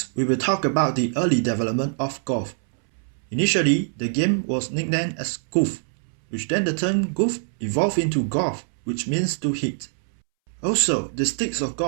we will talk about the early development of golf. Initially, the game was nicknamed as goof, which then the term goof evolved into golf, which means to hit. Also, the sticks of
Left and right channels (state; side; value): silent; left; 63 dB below the other